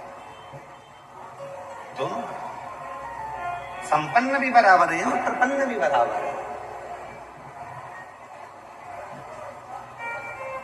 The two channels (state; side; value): identical; both; correlation 1.00